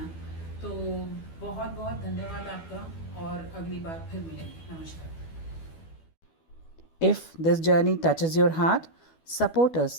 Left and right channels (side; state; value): right; late; 12 ms